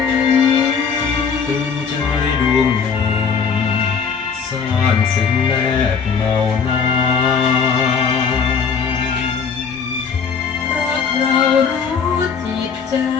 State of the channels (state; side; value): quieter; right; 6.2 dB